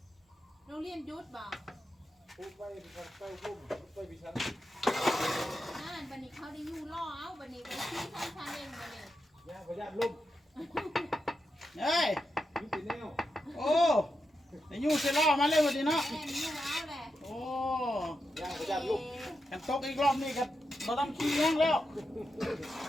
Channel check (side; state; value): both; normal; correlation 0.87